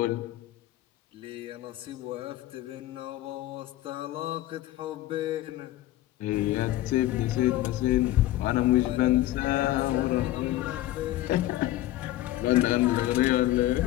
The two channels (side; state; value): right; quieter; 15.3 dB